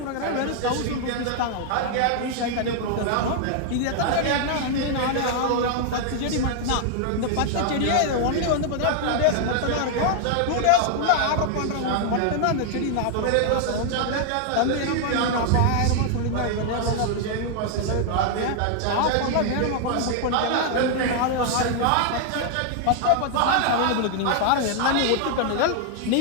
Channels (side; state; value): both; different; correlation 0.00